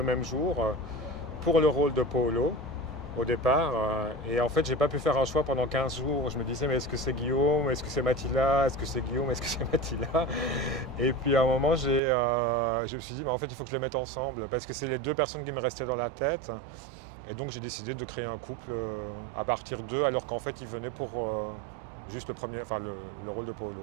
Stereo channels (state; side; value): drops out; left; at 12.0 s